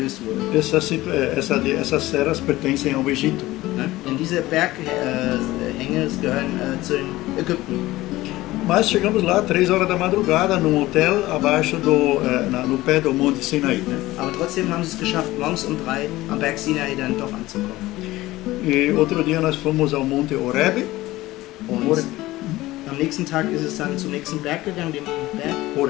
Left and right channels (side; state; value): right; quieter; 17.7 dB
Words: wurde. Essas serras pertencem ao Egito. Denn diese Berghänge gehören zu den Ägypten. Mas chegamos lá 3 horas da madrugada, num hotel abaixo no pé do Monte Sinai. Aber trotzdem haben sie es geschafft, morgens um 3 am Berg Sinai dann doch anzukommen. E outro dia nós fomos ao Monte Horeb. Und am nächsten Tag ist es dann zum nächsten Berg gegangen, dem Berg